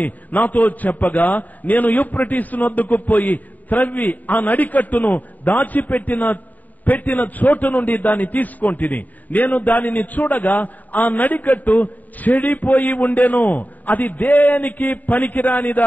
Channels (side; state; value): right; late; 0.080 ms